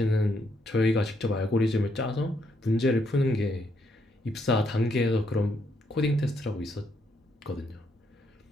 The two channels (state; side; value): normal; both; correlation 0.75